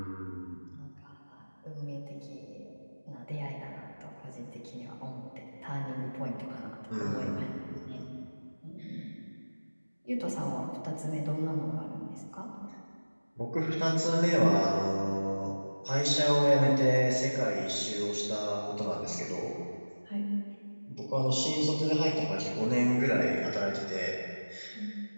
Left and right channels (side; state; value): both; inverted; correlation -1.00